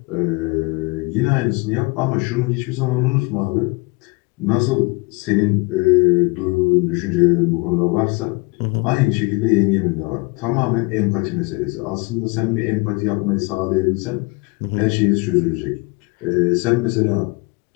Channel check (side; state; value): right; quieter; 27.5 dB